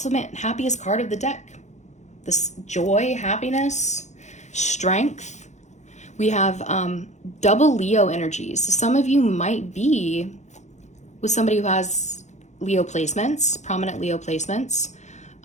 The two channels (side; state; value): right; late; 0.34 ms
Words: happiest card of the deck. This joy, happiness, strength. We have double Leo energies. So some of you might be with somebody who has Leo placements, prominent Leo placements.